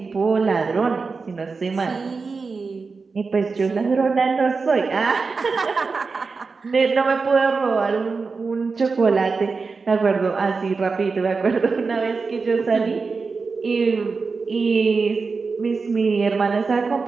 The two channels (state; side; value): quieter; left; 4.5 dB